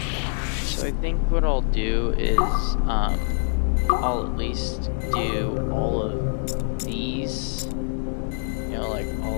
So I think what I'll do is, I'll at least do all of these, you know, like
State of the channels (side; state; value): right; silent; digital silence